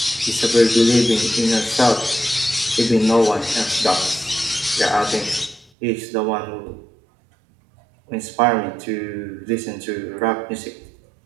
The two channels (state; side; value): drops out; left; at 5.7 s